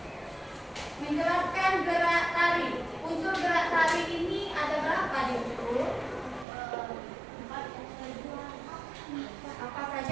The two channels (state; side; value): drops out; left; at 6.5 s